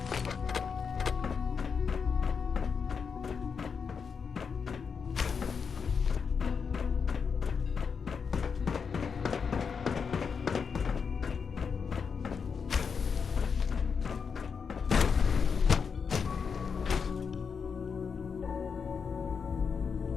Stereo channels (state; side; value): quieter; right; 6.0 dB